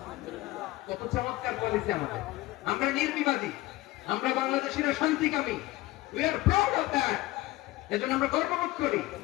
কত চমৎকার পলিসি আমাদের। আমরা নির্বিবাদী, আমরা বাংলাদেশিরা শান্তিকামী। We are proud of that. এজন্য আমরা গর্ববোধ করি।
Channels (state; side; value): quieter; right; 18.2 dB